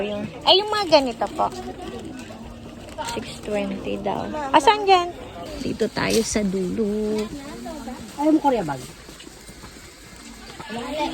Yung mga ganito po. 620 daw. Asan dyan? Dito tayo sa dulo. Ayaw mo Korea bag?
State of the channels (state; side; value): identical; both; correlation 1.00